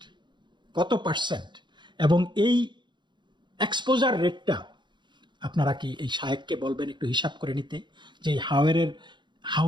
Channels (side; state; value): left; late; 0.22 ms